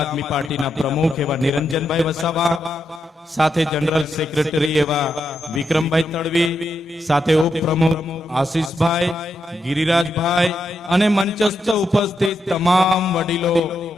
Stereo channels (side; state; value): both; normal; correlation 0.83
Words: આદમી પાર્ટીના પ્રમુખ એવા નિરંજનભાઈ વસાવા, સાથે જનરલ સેક્રેટરી એવા વિક્રમભાઈ તડવી, સાથે ઉપપ્રમુખ આશીષભાઈ, ગિરિરાજભાઈ અને મંચસ્થ ઉપસ્થિત તમામ વડીલો,